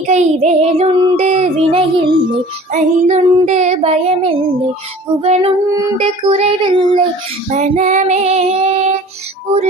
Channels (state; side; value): normal; both; correlation 0.46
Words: வேலுண்டு வினையில்லை, மயிலுண்டு பயமில்லை, புகனுண்டு குறைவில்லை மனமே.